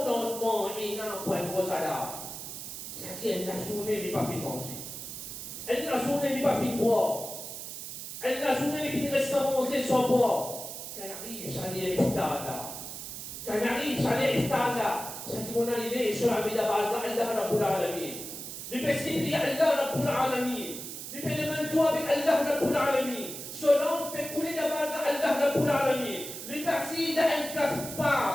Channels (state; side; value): noise; right; hiss, 9 dB below the sound